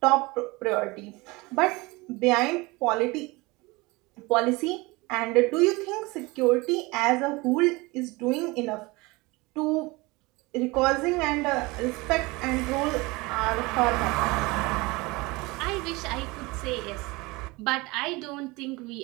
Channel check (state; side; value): quieter; left; 23.6 dB